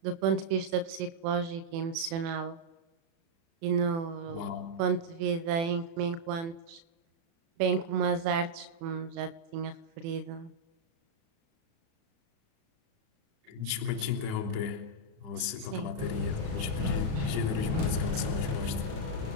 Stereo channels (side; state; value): left; late; 35 ms